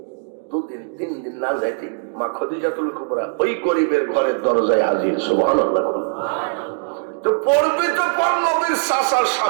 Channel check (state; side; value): silent; left; 65 dB below the other